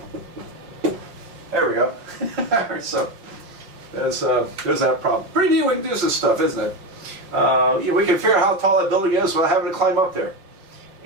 There we go. So there's that problem. Pretty neat we can do this stuff, isn't it? We can figure out how tall that building is without having to climb up there.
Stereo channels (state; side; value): late; left; 5.4 ms